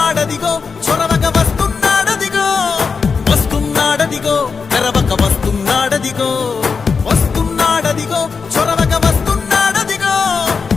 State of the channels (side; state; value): right; quieter; 5.2 dB